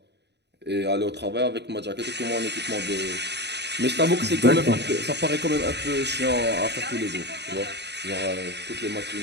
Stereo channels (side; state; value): left; late; 0.50 ms